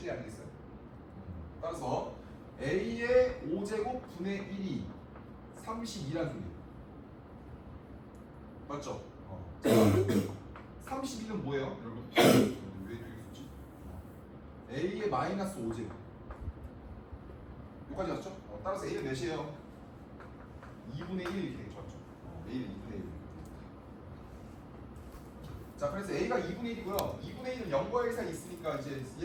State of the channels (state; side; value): identical; both; correlation 1.00